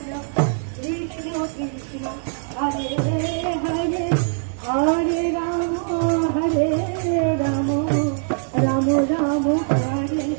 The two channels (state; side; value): silent; left; digital silence